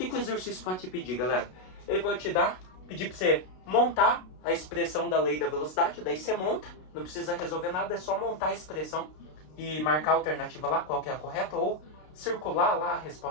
o exercício pode te pedir, galera? Ele pode pedir para você montar a expressão da lei da velocidade. Daí você monta, não precisa resolver nada, é só montar a expressão e marcar a alternativa lá, qual que é a correta, ou circular lá a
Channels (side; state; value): right; late; 32 ms